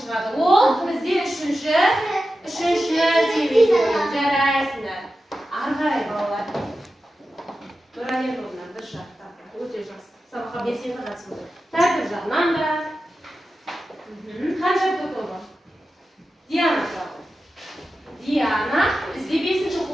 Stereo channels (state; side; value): normal; both; correlation 0.92